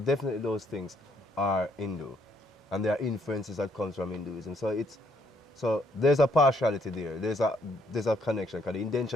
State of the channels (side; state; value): both; normal; correlation 0.70